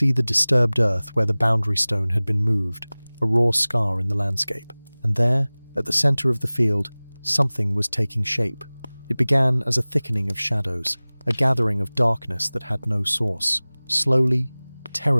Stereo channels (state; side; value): inverted; both; correlation -1.00